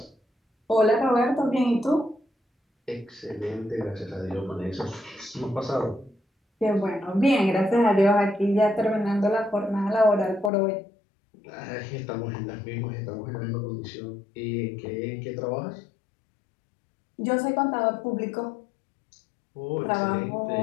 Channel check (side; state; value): right; drops out; at 10.5 s